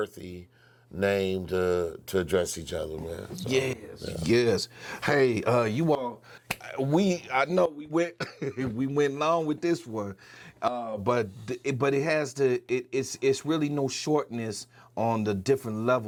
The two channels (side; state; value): both; identical; correlation 1.00